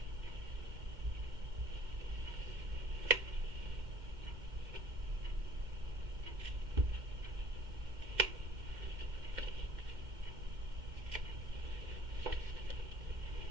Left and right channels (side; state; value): left; late; 2.1 ms